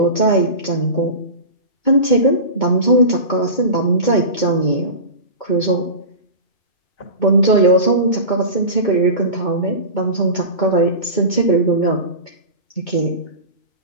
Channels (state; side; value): late; right; 2.2 ms